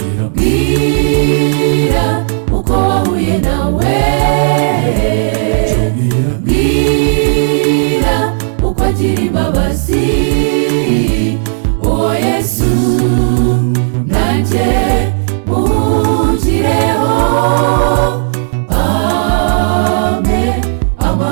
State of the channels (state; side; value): silent; left; digital silence